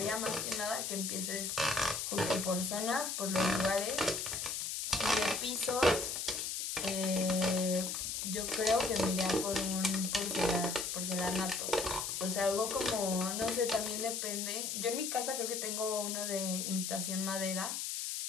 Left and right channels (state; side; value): noise; left; hiss, 3 dB below the sound